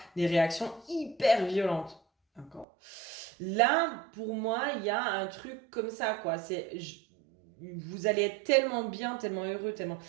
des réactions hyper violentes. D'accord. Là, pour moi, il y a un truc comme ça, quoi. Vous allez être tellement bien, tellement heureux, tellement.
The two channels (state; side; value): drops out; left; at 2.7 s